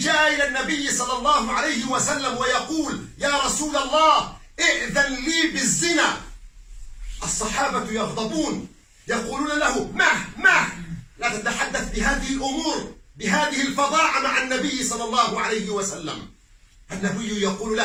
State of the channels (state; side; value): identical; both; correlation 1.00